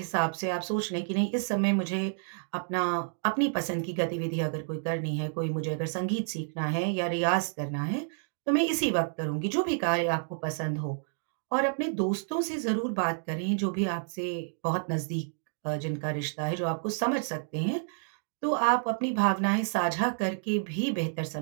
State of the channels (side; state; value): left; silent; digital silence